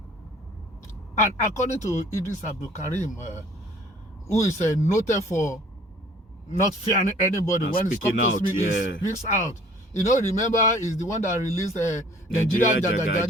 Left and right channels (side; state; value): both; normal; correlation 0.53